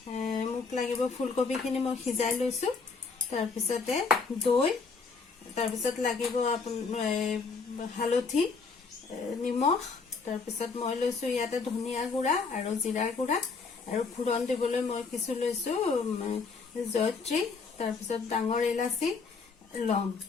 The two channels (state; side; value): quieter; right; 4.7 dB